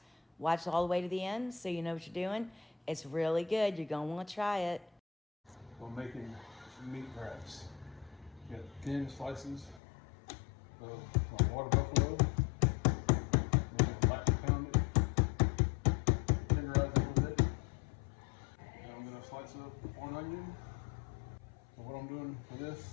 Watch all the way to the end so you know what you're doing. It's really good, you're going to want to try it. We're making meat wraps. You got thin slices of my water buffalo. We're going to lightly pound it, tenderize it a little bit. Then I'm going to slice up one onion. So what I'm doing for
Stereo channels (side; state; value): right; drops out; at 9.8 s